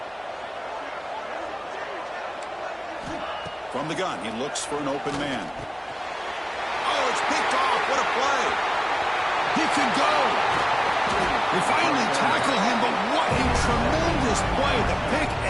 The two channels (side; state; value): both; identical; correlation 1.00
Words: From the gun, he looks for an open man. Oh, it's picked off. What a play. He can go. They finally tackle him, but what a tremendous play. The pick